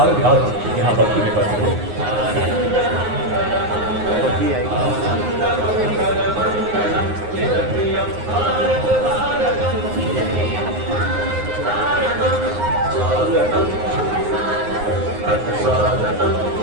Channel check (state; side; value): late; left; 9.6 ms